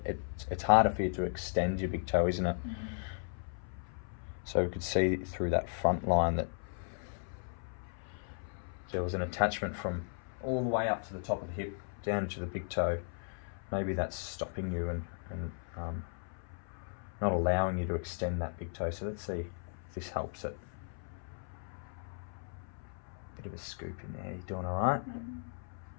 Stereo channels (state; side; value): silent; right; 54 dB below the other